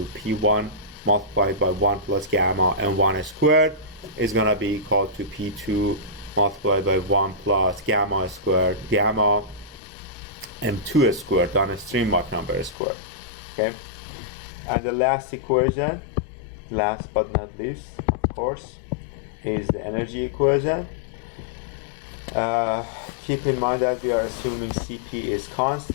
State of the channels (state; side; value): drops out; right; at 12.8 s